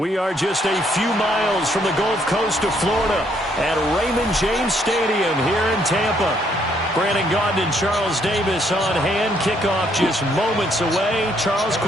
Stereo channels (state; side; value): normal; both; correlation 0.70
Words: are just a few miles from the Gulf Coast of Florida at Raymond James Stadium here in Tampa. Brandon Gaudin and Charles Davis on hand. Kickoff just moments away. Charles,